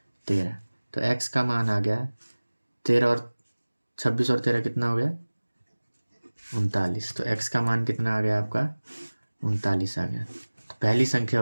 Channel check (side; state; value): both; inverted; correlation -1.00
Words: 13। तो x का मान आ गया 13 और 26 और 13 कितना हो गया, 39। तो x का मान कितना आ गया आपका 39 आ गया। तो पहली संख्या